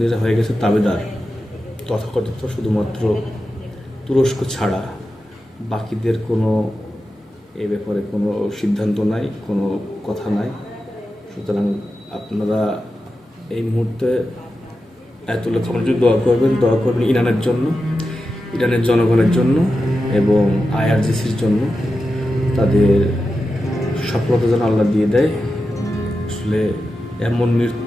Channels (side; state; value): both; normal; correlation 0.91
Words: হয়ে গেছে তাবেদার তথাকথিত, শুধুমাত্র তুরস্ক ছাড়া বাকিদের কোনো এ ব্যাপারে কোনো সিদ্ধান্ত নাই, কোনো কথা নাই। সুতরাং আপনারা এই মুহূর্তে আয়াতুল্লাহ খামেনির দোয়া করবেন ইরানের জন্য, ইরানের জনগণের জন্য এবং আইআরজিসির জন্য। তাদের সফলতা যেন আল্লাহ দিয়ে দেয়। আসলে এমন